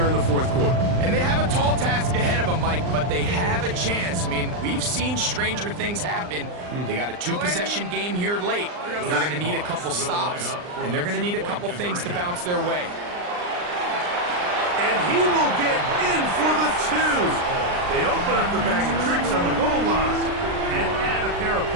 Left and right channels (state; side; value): late; left; 39 ms